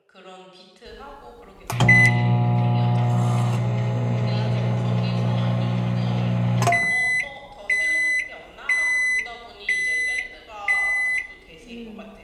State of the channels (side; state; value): both; identical; correlation 1.00